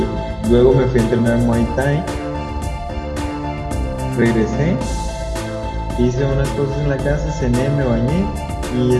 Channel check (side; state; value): both; identical; correlation 1.00